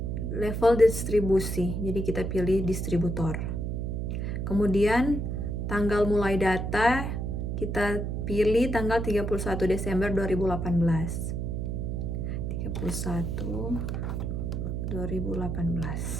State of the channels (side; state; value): right; noise; hum, 2 dB below the sound